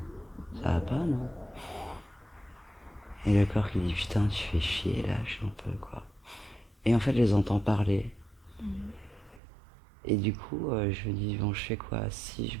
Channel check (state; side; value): drops out; left; at 9.4 s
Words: ça va pas non? Et le corps qui dit putain tu fais chier, lâche un peu quoi. Et en fait je les entends parler. Et du coup je me dis bon je fais quoi? Si